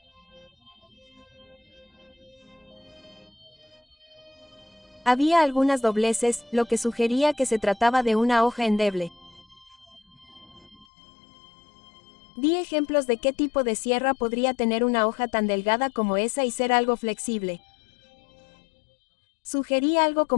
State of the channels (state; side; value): drops out; right; at 10.9 s